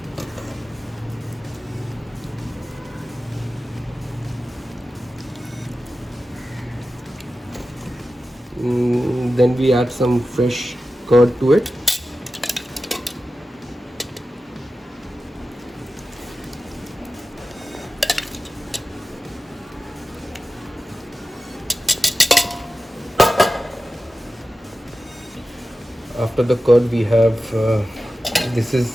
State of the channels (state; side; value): normal; both; correlation 0.93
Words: Then we add some fresh curd to it. After the curd we have this